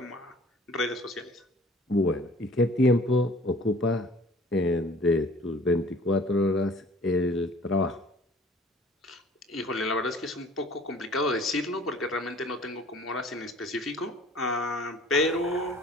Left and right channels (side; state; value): both; normal; correlation 0.50